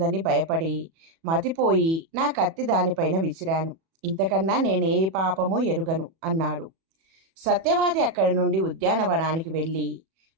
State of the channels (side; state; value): left; late; 37 ms